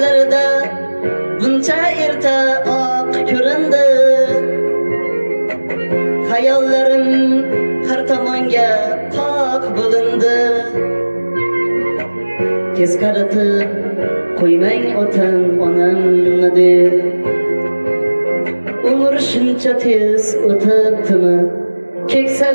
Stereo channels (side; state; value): both; inverted; correlation -1.00